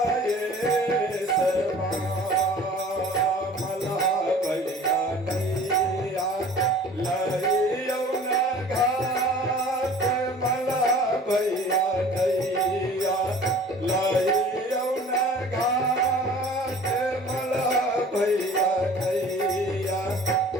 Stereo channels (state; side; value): normal; both; correlation 0.46